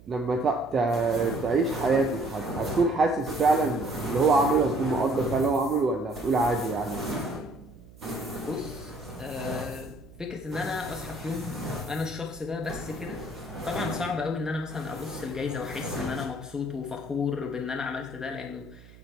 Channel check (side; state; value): right; noise; hum, 21 dB below the sound